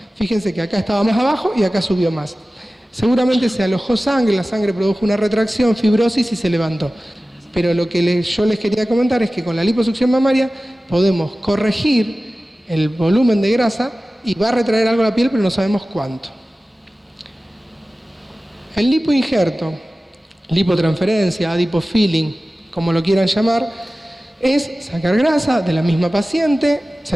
Fíjense que acá estaba más abajo y acá subió más. Seguramente se alojó sangre, la sangre produjo una retracción, fibrosis y se levantó. Pero lo que yo les quería comentar es que con la liposucción mamaria podemos corregir el volumen de grasa y va a retraer algo la piel, pero no sabemos cuánto. El lipoinjerto, lipotransferencia, adipofilling, como lo quieran llamar, es sacar grasa de la misma paciente,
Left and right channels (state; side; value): normal; both; correlation 0.96